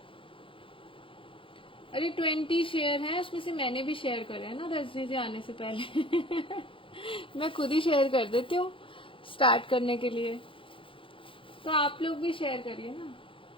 अरे 20 शेयर है, उसमें से मैंने भी शेयर करे है ना रजनी जी आने से पहले। मैं खुद ही शेयर कर देती हूँ स्टार्ट करने के लिए, तो आप लोग भी शेयर करिए ना।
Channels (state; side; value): late; right; 0.25 ms